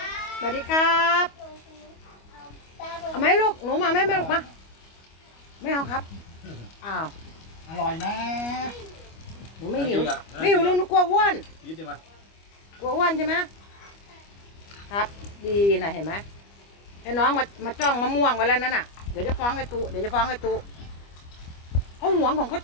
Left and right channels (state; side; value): late; right; 25 ms